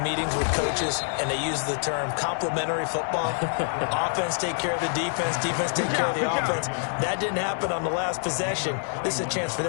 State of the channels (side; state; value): right; silent; 58 dB below the other